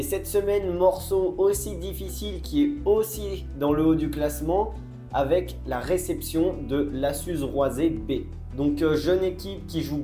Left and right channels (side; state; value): both; identical; correlation 1.00